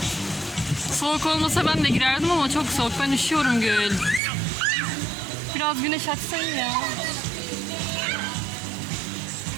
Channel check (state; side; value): drops out; left; at 4.2 s